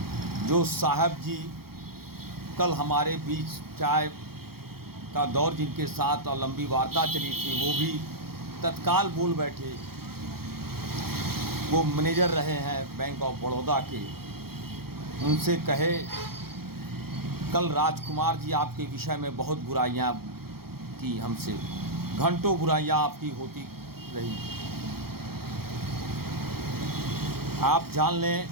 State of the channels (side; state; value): left; late; 0.95 ms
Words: जो साहब जी कल हमारे बीच चाय का दौर जिनके साथ और लंबी वार्ता चली थी, वो भी तत्काल बोल बैठे। वो मैनेजर रहे हैं बैंक ऑफ बड़ौदा के। उनसे कहे, कल राजकुमार जी आपके विषय में बहुत बुराइयां की, हमसे घंटों बुराइयां आपकी होती रही। आप जान लें